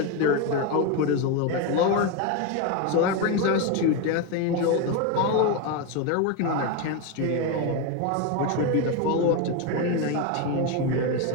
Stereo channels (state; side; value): different; both; correlation 0.03